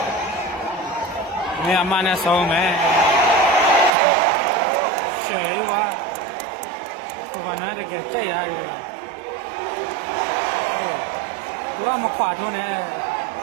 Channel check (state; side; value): drops out; left; at 3.9 s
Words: နေအမနဲ့ဆုံးမယ်ရှယ်ဝါဘာနာတကယ်ကြိုက်ရတယ်သူကမခွာထုံးနဲ့